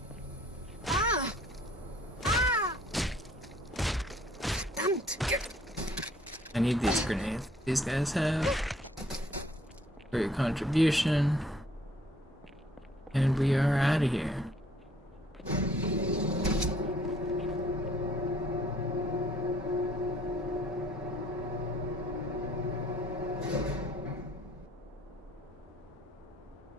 I need these grenades these guys have for your contribution. And we are out of here.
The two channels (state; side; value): normal; both; correlation 0.61